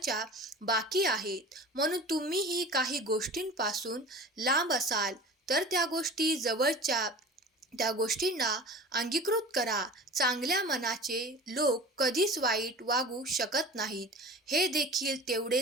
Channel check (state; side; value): normal; both; correlation 0.37